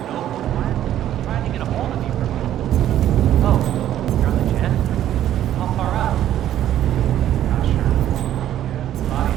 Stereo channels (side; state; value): left; quieter; 11.8 dB